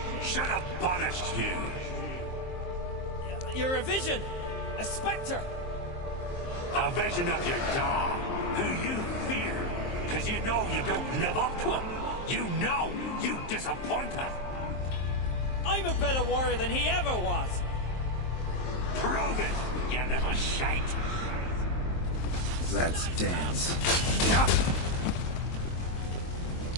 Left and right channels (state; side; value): late; right; 23 ms